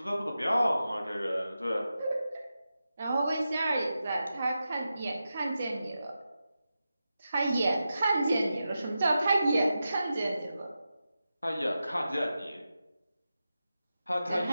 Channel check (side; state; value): both; inverted; correlation -0.91